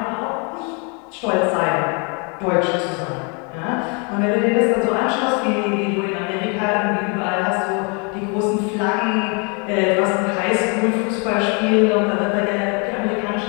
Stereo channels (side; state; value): right; quieter; 34.3 dB